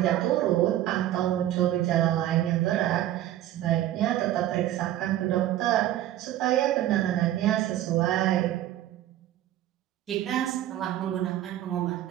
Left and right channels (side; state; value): left; quieter; 13.2 dB